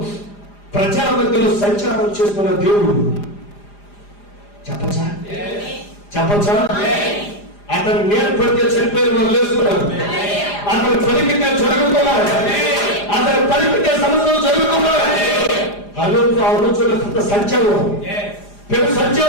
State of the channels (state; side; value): late; right; 4.9 ms